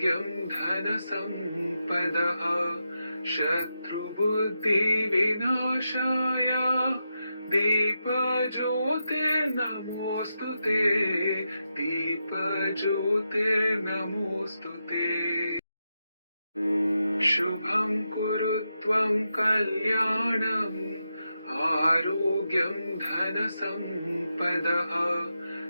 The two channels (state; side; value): inverted; both; correlation -0.86